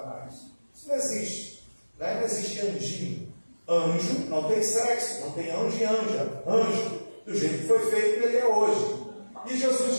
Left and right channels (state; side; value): inverted; both; correlation -1.00